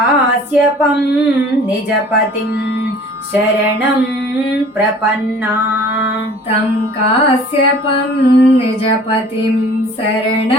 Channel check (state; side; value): normal; both; correlation 0.49